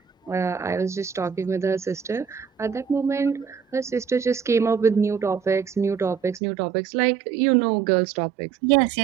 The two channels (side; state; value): left; drops out; at 6.4 s